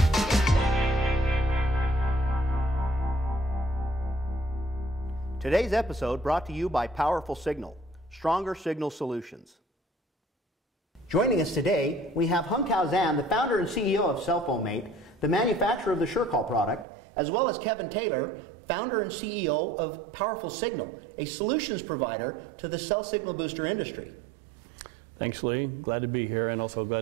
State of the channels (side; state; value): left; drops out; at 16.9 s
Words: Today's episode brought to you by Powerful Signal, Stronger Signal Solutions. Joining us today, we have Hongtao Zhan, the founder and CEO of CellPhone-Mate, the manufacturer of the SureCall product, as well as Kevin Taylor, founder and CEO of Powerful Signal, a solutions provider to the cell signal booster industry. Thanks, Lee. Glad to be here, and also glad